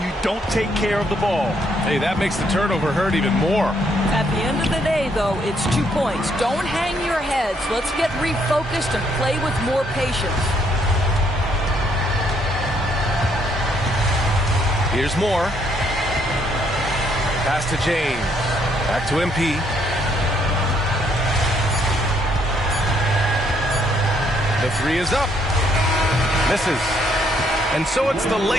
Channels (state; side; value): normal; both; correlation 0.70